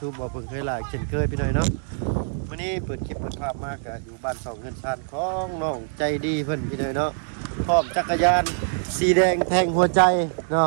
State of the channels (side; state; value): left; silent; digital silence